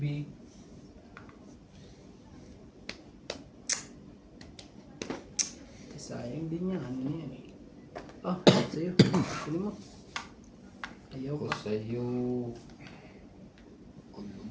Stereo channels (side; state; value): both; identical; correlation 1.00